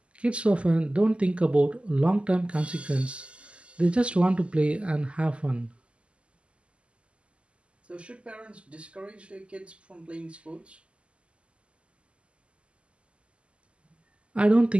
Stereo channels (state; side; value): late; left; 0.055 ms